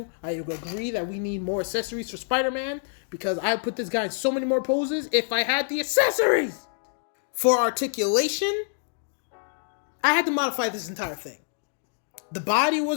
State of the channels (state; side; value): silent; right; digital silence